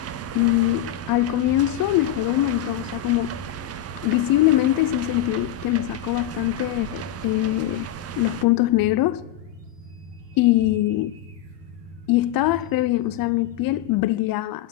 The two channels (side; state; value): right; quieter; 12.3 dB